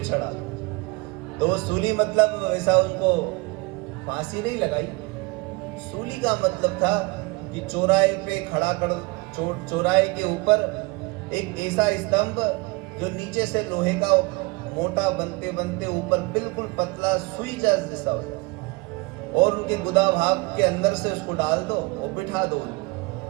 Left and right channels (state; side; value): quieter; left; 24.8 dB